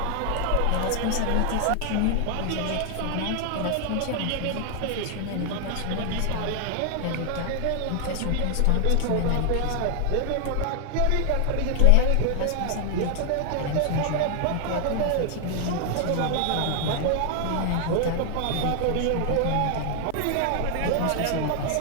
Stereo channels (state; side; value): different; both; correlation 0.00